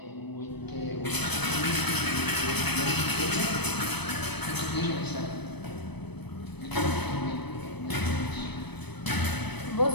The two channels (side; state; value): right; late; 0.99 ms